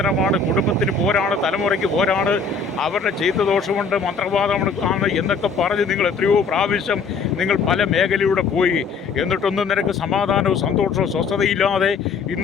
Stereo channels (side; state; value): right; quieter; 4.9 dB